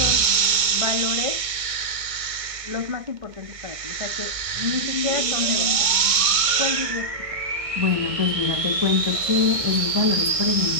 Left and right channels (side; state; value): left; late; 1.6 ms